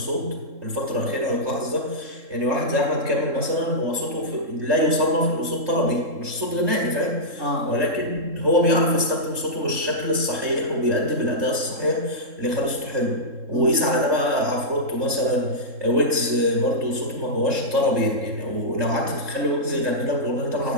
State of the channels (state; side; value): late; left; 3.7 ms